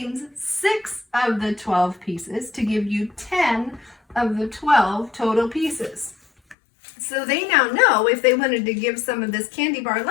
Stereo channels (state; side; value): drops out; right; at 6.6 s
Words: 6 of the 12 pieces to give you 10 of the 12 total pieces. So they now know if they wanted to give some of this candy bar